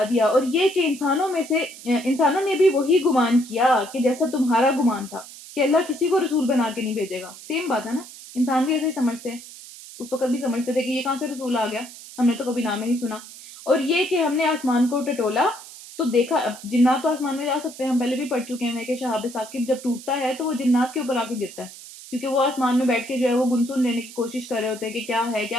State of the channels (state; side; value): noise; right; hiss, 16 dB below the sound